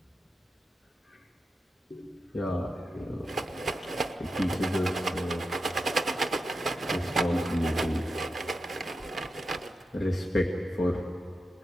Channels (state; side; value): normal; both; correlation 0.89